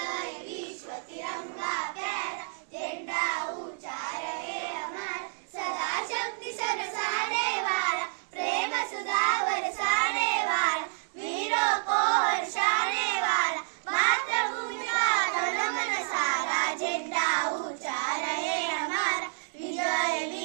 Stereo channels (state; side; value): silent; left; digital silence